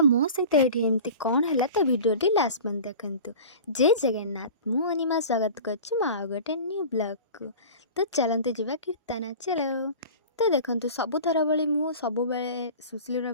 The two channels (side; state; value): both; inverted; correlation -0.38